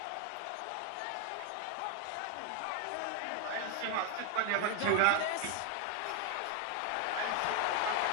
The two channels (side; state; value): both; different; correlation 0.01